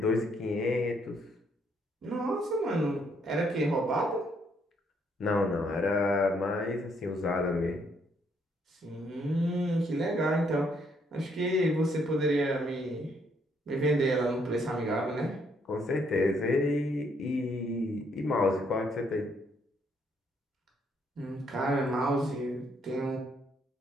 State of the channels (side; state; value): both; normal; correlation 0.71